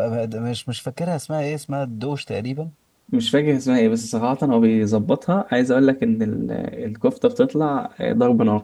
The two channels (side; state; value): both; identical; correlation 1.00